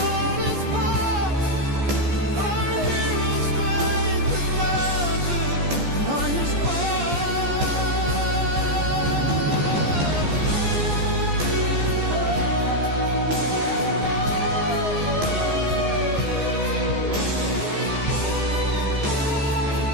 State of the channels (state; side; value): late; left; 14 ms